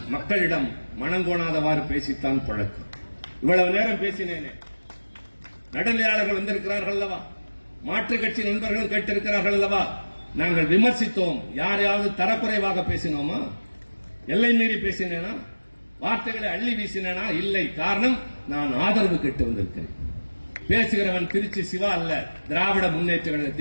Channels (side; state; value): both; inverted; correlation -1.00